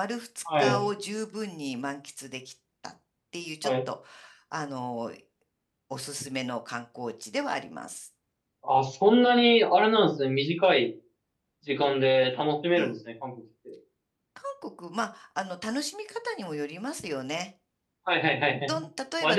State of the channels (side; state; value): both; identical; correlation 1.00